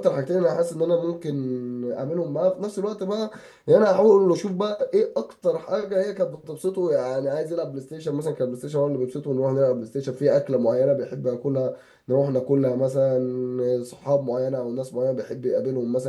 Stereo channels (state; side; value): identical; both; correlation 1.00